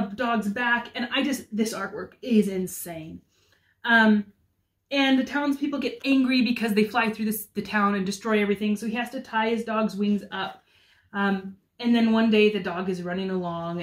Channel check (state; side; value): identical; both; correlation 1.00